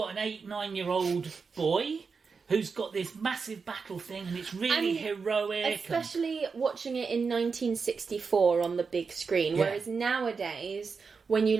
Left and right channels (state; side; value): quieter; left; 5.1 dB